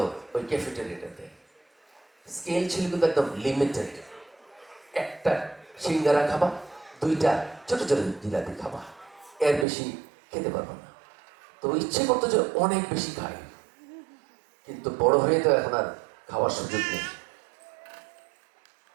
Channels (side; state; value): left; drops out; at 9.7 s